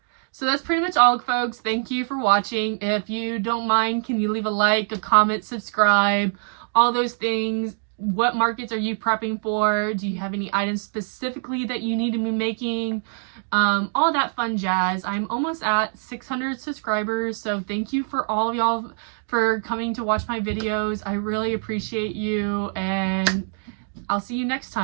So that's pretty much all, folks. Thank you for watching. If you don't mind, can you leave a like, a comment, subscribe, all those things. What markets are you prepping for? Do you have any items specifically that you need to be making? All that fun jazz. I'm almost at 600 subscribers, so thank you for all of y'all for coming to watch my videos. I really appreciate you, and I'll see you next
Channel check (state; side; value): silent; left; 63 dB below the other